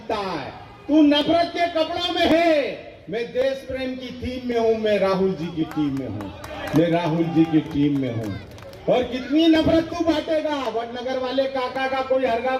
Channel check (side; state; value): both; identical; correlation 1.00